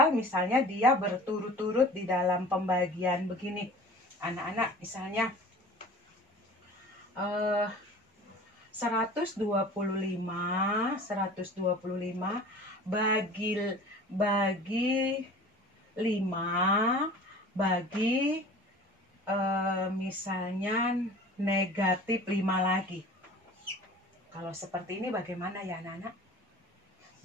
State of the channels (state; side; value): normal; both; correlation 0.42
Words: misalnya dia berturut-turut di dalam pembagian begini. Anak-anak, misalnya 125 bagi 5 bagi misalnya negatif 5 lagi. Kalau seperti ini bagaimana ya anak-anak?